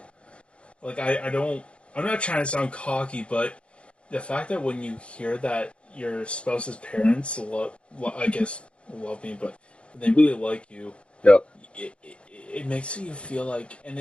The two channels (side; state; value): right; late; 0.059 ms